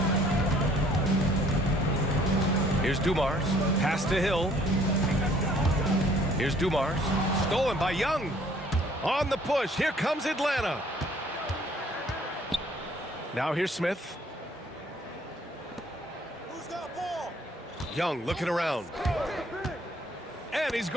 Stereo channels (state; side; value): normal; both; correlation 0.59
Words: Here's Dumars. Pass to Hill. Here's Dumars. Stolen by Young. On the push. Here comes Atlanta. Now here's Smith. Who's got ball? Young looking around. And he's